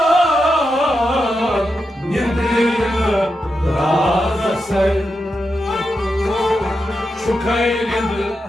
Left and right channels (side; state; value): both; normal; correlation 0.87